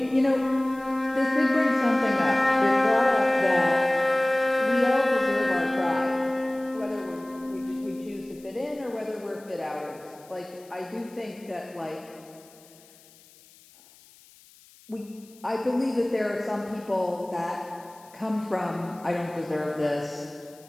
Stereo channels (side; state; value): left; noise; hiss, 26 dB below the sound